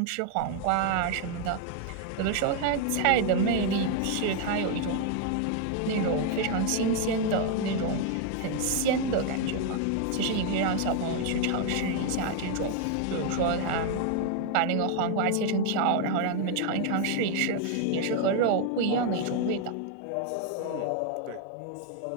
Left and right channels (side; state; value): both; different; correlation 0.00